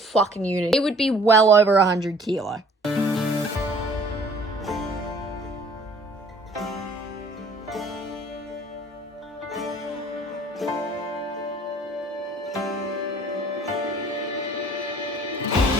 unit. It would be well over 100 kilo.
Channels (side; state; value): both; normal; correlation 0.54